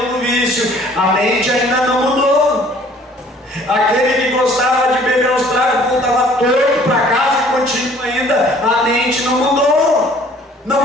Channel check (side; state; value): both; normal; correlation 0.55